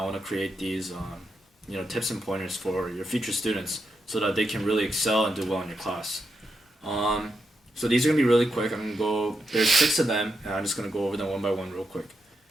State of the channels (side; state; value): both; normal; correlation 0.84